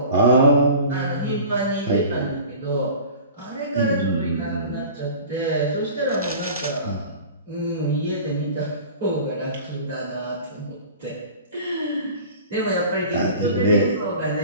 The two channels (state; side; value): inverted; both; correlation -0.40